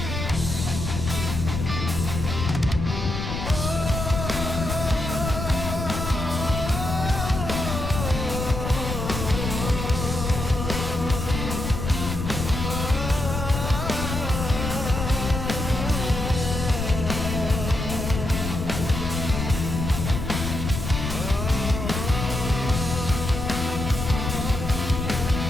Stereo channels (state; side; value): noise; left; rumble, 4 dB below the sound